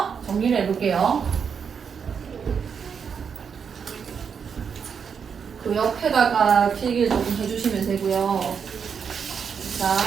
정리를 해볼게요. 그 옆에다가 필기를 조금 해주시면 되고요.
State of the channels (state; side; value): quieter; left; 6.7 dB